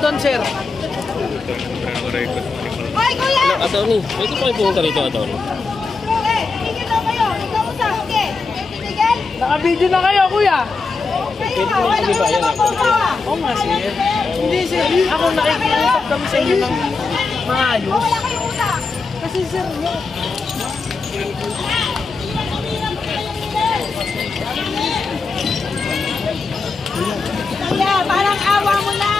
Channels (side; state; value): right; quieter; 4.3 dB